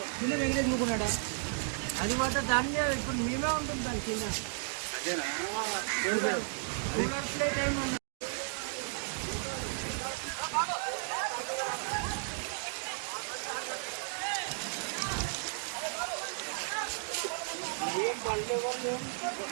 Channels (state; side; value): silent; left; 55 dB below the other